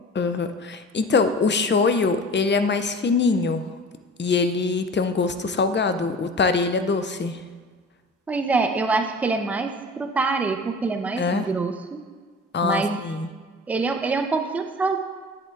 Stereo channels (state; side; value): normal; both; correlation 0.39